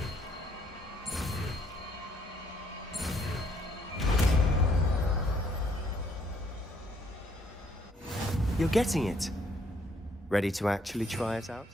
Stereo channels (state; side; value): normal; both; correlation 0.68